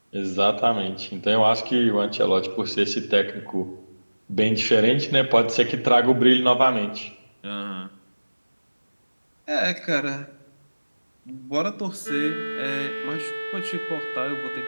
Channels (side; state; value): both; inverted; correlation -1.00